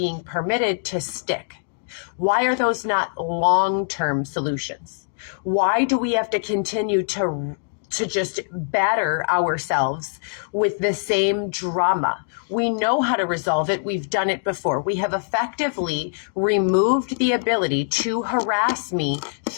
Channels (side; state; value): right; silent; digital silence